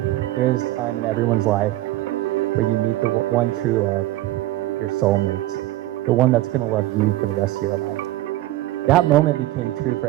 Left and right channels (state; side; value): quieter; left; 16.4 dB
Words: there is a time in everyone's life where you meet the one true love, your soulmate, the one that's going to love you for the rest of your life. That moment became true for